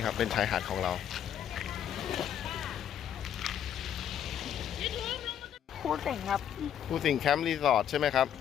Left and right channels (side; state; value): right; quieter; 9.6 dB